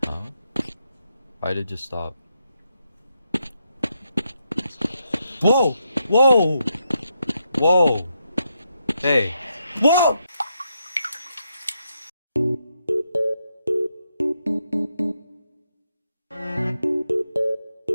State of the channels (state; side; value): inverted; both; correlation -0.81